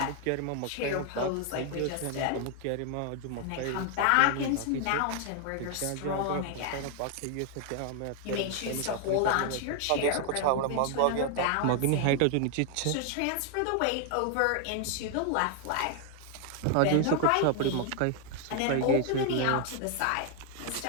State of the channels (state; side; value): different; both; correlation 0.00